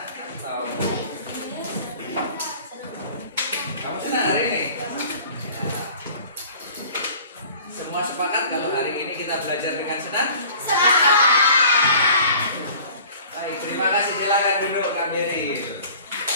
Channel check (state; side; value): inverted; both; correlation -0.47